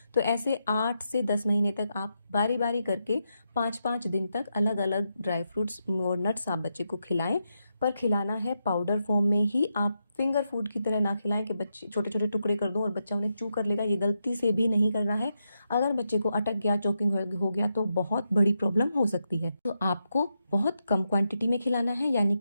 तो ऐसे 8 से 10 महीने तक आप बारी बारी करके 5-5 दिन तक अलग अलग ड्राई फ्रूट्स और नट्स आप बच्चे को खिलाएं, पर खिलाना है पाउडर फॉर्म में ही। आप फिंगर फूड की तरह ना खिलाएं कि बच्चे छोटे छोटे टुकड़े कर दो और बच्चा उन्हें चू कर लेगा, ये गलती से भी नहीं करना है। अगर बच्चे को अटक गया, चोकिंग हो गया तो बहुत बड़ी प्रॉब्लम हो सकती है। तो आपको बहुत कम क्वांटिटी में खिलाना है, यानी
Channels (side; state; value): both; inverted; correlation -0.84